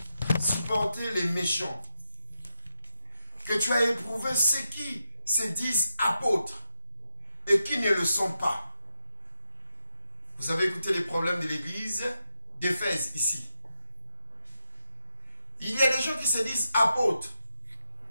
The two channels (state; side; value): inverted; both; correlation -0.87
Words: supporter les méchants, que tu as éprouvé ceux qui se disent apôtres et qui ne le sont pas. Vous avez écouté les problèmes de l'église d'Éphèse ici. Il y a des gens qui se disent apôtres.